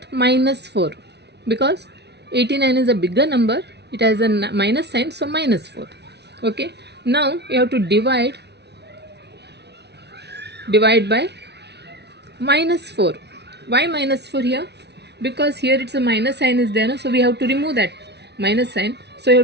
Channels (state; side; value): late; left; 0.49 ms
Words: minus 4, because 89 is a bigger number, it has a minus sign, so minus 4. Okay, now you have to divide by minus 4. Why minus 4 here? Because here it's a minus sign is there, no? So we have to remove that minus sign, so you